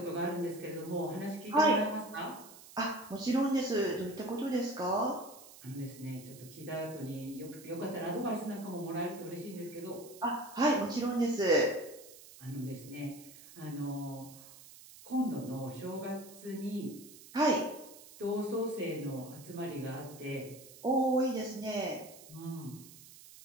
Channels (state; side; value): noise; right; hiss, 18 dB below the sound